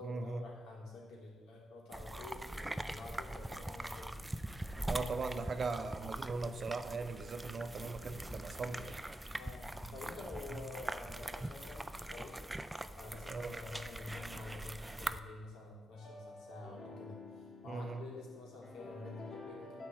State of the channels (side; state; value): both; normal; correlation 0.88